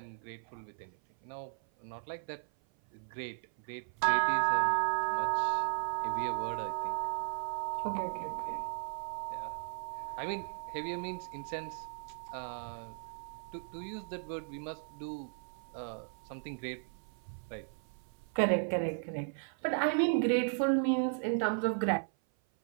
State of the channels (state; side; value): silent; left; 54 dB below the other